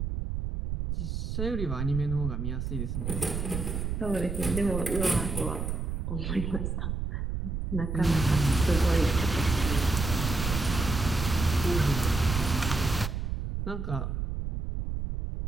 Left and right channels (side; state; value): right; noise; rumble, 3 dB below the sound